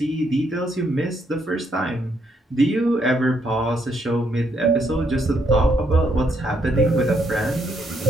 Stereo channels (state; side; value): normal; both; correlation 0.74